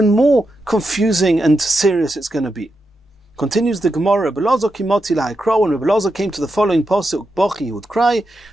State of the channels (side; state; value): both; normal; correlation 0.86